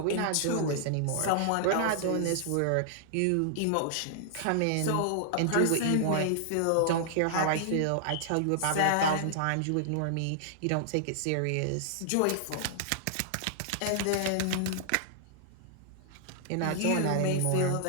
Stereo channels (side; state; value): both; different; correlation -0.01